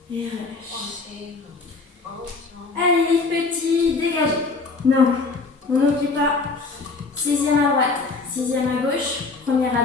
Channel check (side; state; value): right; quieter; 4.0 dB